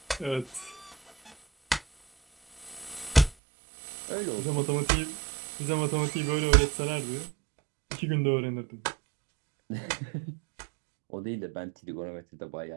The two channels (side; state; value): left; drops out; at 3.4 s